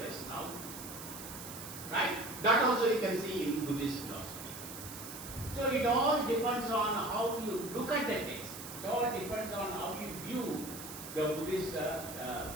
now. Right? That also you can see in Buddhist philosophy. So it all depends on how you look at the text. It all depends on how you view the Buddhist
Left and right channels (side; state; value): right; noise; hiss, 11 dB below the sound